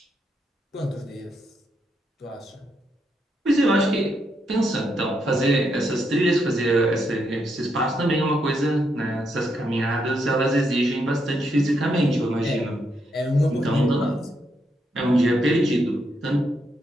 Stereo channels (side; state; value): both; normal; correlation 0.79